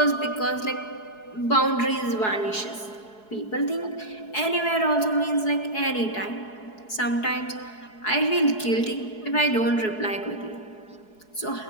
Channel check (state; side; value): late; right; 4.7 ms